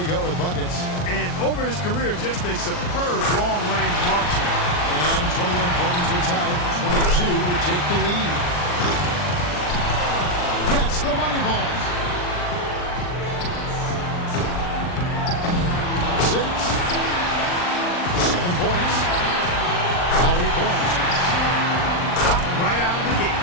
go with buckets. And over his career, just a superb long-range marksman. And 21 points would tie it. 22 would take the lead. Gets the money ball. 6. 7 points. Now 8 points. Right out of the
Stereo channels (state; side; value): late; right; 39 ms